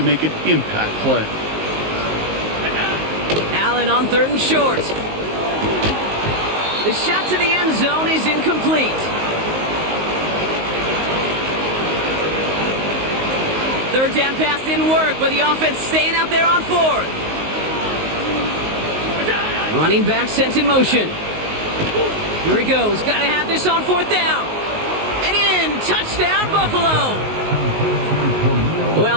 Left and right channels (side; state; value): left; late; 19 ms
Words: make an impact play. Allen on 3rd and short. The shot to the end zone is incomplete. 3rd down pass didn't work, but the offense staying out there on 4th. Running back sent in motion. Here he goes. Got to have this on 4th down. And in. Touchdown, Buffalo.